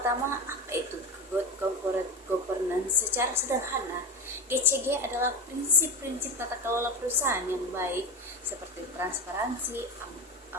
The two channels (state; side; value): normal; both; correlation 0.21